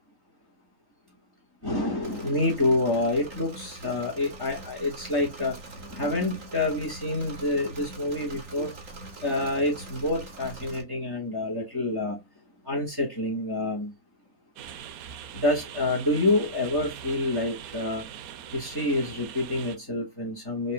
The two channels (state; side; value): late; left; 3.8 ms